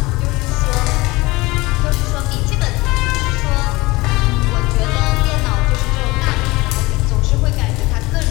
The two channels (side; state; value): right; quieter; 21.8 dB